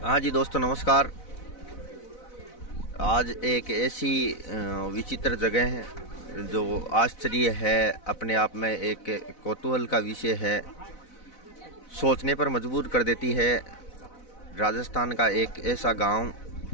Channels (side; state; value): right; late; 4.0 ms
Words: हाँ जी दोस्तों, नमस्कार। आज एक ऐसी विचित्र जगह है जो आश्चर्य है, अपने आप में एक कौतूहल का विषय है, सोचने पर मजबूर कर देती है। राजस्थान का एक ऐसा गांव